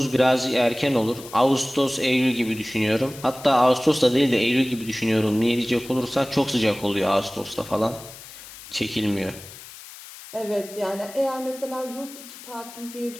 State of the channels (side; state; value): left; noise; hiss, 16 dB below the sound